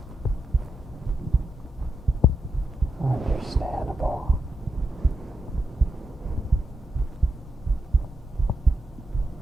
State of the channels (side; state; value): both; normal; correlation 0.85